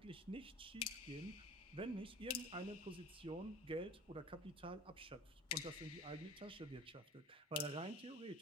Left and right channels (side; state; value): both; normal; correlation 0.40